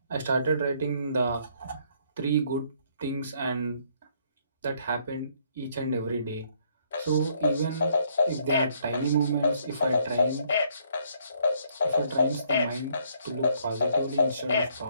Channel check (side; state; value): both; inverted; correlation -0.68